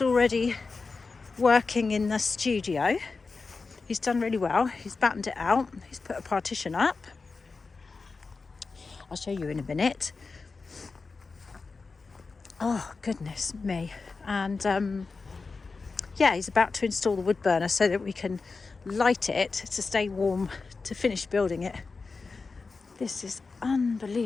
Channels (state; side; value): quieter; right; 4.3 dB